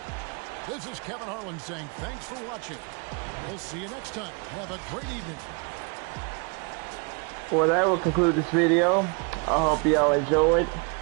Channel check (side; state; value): left; quieter; 34.0 dB